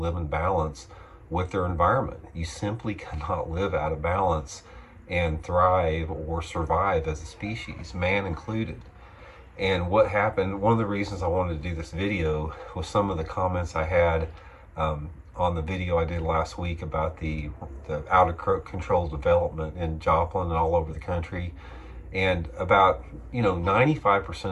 in balance with their environment. You simply cannot live out of balance and thrive or survive as a species, man included. And what happened, one of the reasons I wanted to do this video was some of the comments I had on the video I did last week about the out of control development in Joplin and all over the country. And about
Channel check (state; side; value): identical; both; correlation 1.00